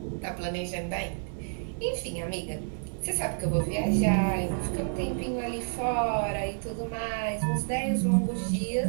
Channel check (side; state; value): left; silent; 58 dB below the other